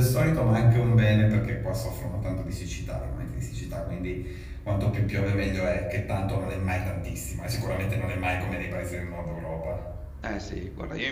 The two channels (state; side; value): identical; both; correlation 1.00